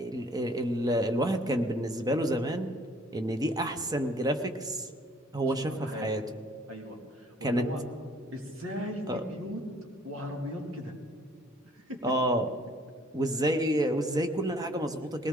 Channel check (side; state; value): both; normal; correlation 0.59